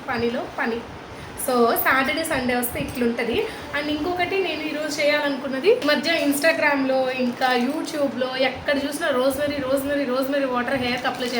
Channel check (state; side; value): identical; both; correlation 1.00